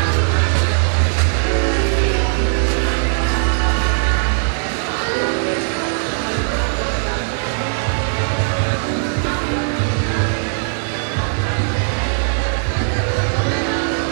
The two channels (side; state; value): left; silent; 64 dB below the other